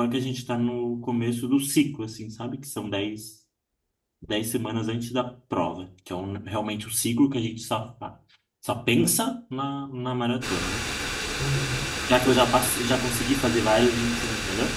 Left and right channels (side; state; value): both; identical; correlation 1.00